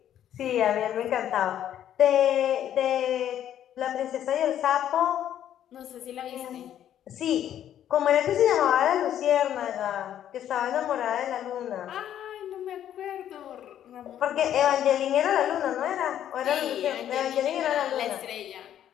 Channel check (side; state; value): right; quieter; 10.7 dB